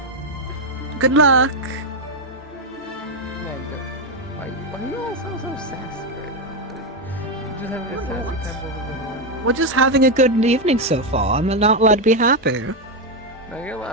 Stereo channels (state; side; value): normal; both; correlation 0.06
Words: Good luck. Man, why are you all so sassy right now? Just having a sassy time over the horn. We're just having a good evening so far. I'm not allowed to be happy. No, you're